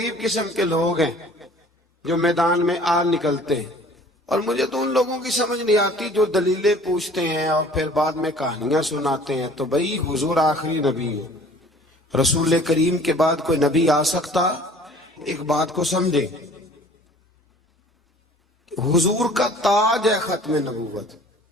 قسم کے لوگ ہیں جو میدان میں آ نکلتے ہیں۔ اور مجھے تو ان لوگوں کی سمجھ نہیں آتی جو دلیلیں پوچھتے ہیں اور پھر بعد میں کہانیاں سناتے ہیں۔ تو بھئی حضور آخری نبی ہے، رسول کریم کے بعد کوئی نبی آ سکتا؟ ایک بات کو سمجھیں، حضور کا تاج ہے ختم نبوت،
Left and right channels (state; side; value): normal; both; correlation 0.50